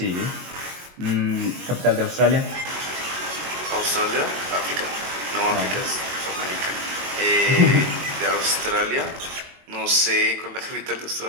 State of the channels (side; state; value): left; late; 22 ms